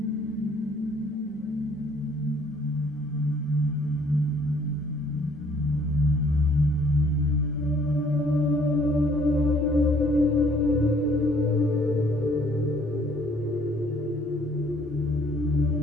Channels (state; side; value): normal; both; correlation 0.60